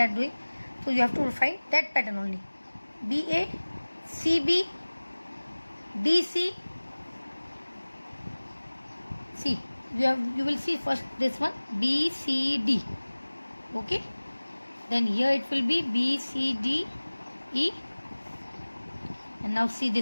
doing, so you have to find that pattern only. BA, CB, DC, C. You will see first this one BCD. Okay. Then here it will be BCD, E. And now see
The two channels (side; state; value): both; inverted; correlation -1.00